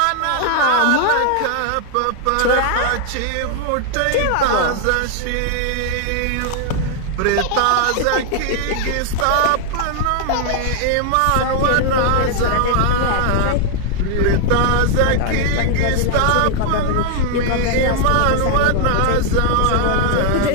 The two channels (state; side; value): different; both; correlation 0.00